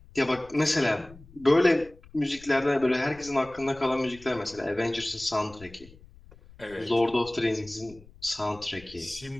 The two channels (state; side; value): noise; left; rumble, 22 dB below the sound